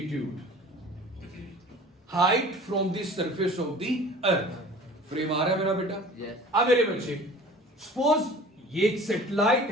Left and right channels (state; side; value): normal; both; correlation 0.44